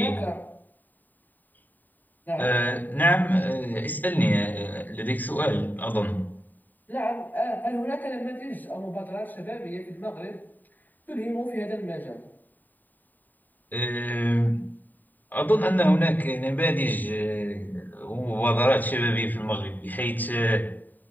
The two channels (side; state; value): right; late; 0.088 ms